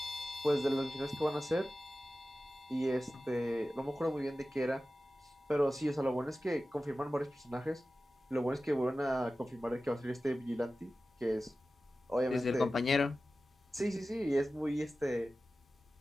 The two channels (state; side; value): normal; both; correlation 0.95